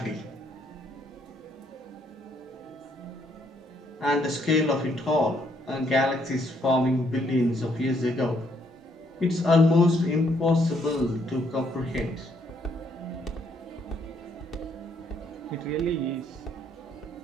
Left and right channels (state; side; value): normal; both; correlation 0.70